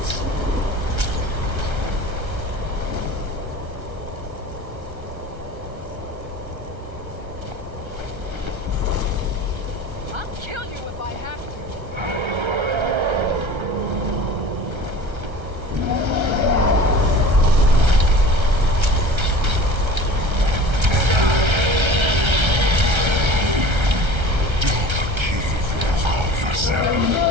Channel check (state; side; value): late; left; 1.3 ms